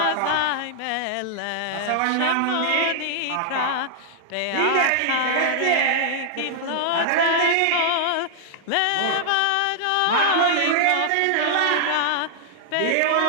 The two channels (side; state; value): both; different; correlation -0.01